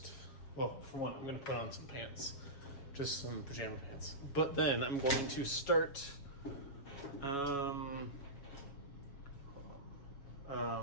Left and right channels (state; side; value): late; right; 7.3 ms